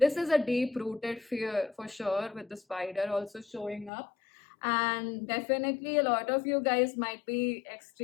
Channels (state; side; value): drops out; right; at 3.9 s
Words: is a deep rooted fear for sure, with the spider also showing up. And definitely a lot of you guys might be